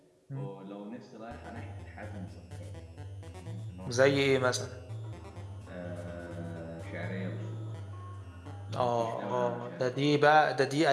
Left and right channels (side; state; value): both; identical; correlation 1.00